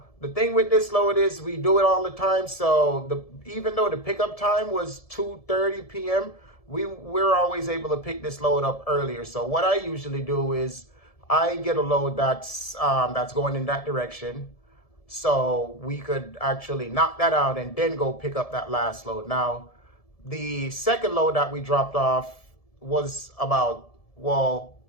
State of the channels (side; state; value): right; late; 1.7 ms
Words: the thing with this load is we do it all the time. So even though the pickup time was 2:30 p.m., we're always able to pick this load up earlier. So what I usually do is I get a load that's going in that direction. So we could actually knock that out and then go pick up that last load. Now, the second load that we dropped off was about,